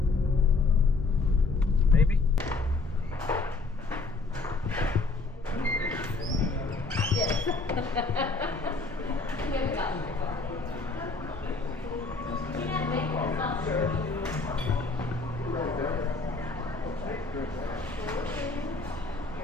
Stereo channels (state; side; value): quieter; right; 3.7 dB